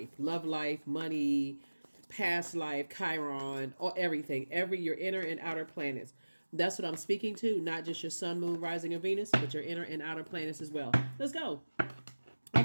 Love life, money, past life, Chiron, or everything. Your inner and outer planets. That's what I'm speaking to, not just your sun, moon, rising, and Venus, but your inner and outer planets as well. Let's go. All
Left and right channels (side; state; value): both; inverted; correlation -1.00